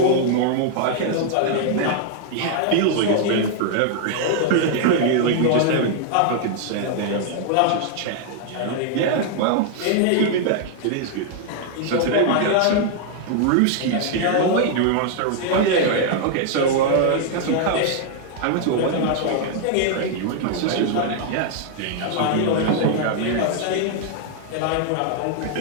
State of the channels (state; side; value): different; both; correlation 0.00